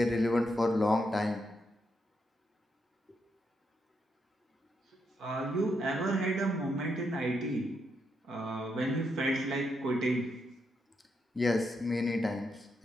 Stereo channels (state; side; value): normal; both; correlation 0.81